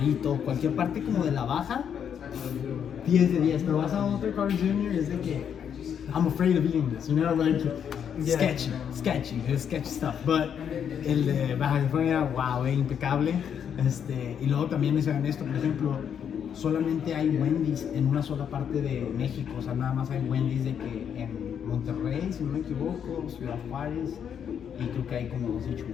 cualquier parte como de la baja, 10 de 10. Pero vas a otro Cars Jr. es de que, I'm afraid of eating this, you know, like, Yeah. sketchy stuff. But el de Baja California, wow, impecable. Y luego también les hagan esto, por ejemplo, solamente hay Wendy's en una sola parte de México, o sea, nada más hay Wendy's de que en Monterrey, si no me equivoco, Ciudad Juárez, y creo que hay como 2 en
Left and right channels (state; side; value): quieter; right; 8.2 dB